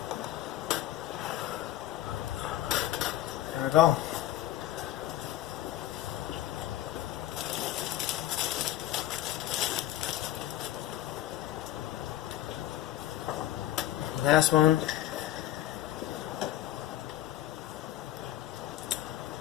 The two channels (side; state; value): right; quieter; 13.5 dB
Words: There we go. Last one.